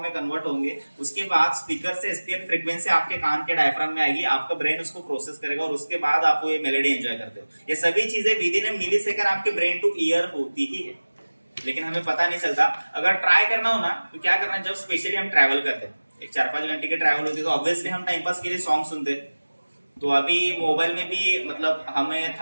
में कन्वर्ट होंगे, उसके बाद स्पीकर से SPL फ्रीक्वेंसी आपके कान के डायफ्राम में आएगी, आपका ब्रेन उसको प्रोसेस करेगा और उसके बाद आप वो ये मेलोडी एंजॉय करते हो। ये सभी चीजें within a millisecond आपके ब्रेन टू ईयर होती ही है, लेकिन हमें पता नहीं चलता। अगर ट्राई करना हो ना तो क्या करना है, जब स्पेशली हम ट्रैवल करते हैं, एक 4-5 घंटे की ट्रैवल होती है, तो ऑब्वियसली हम टाइम पास के लिए सॉन्ग सुनते हैं। तो अभी मोबाइल में भी मतलब हमें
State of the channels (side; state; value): both; inverted; correlation -1.00